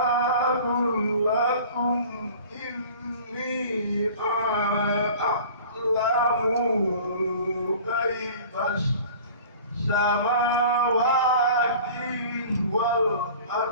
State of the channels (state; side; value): inverted; both; correlation -0.44